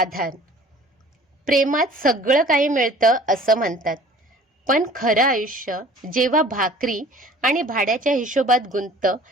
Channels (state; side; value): normal; both; correlation 0.48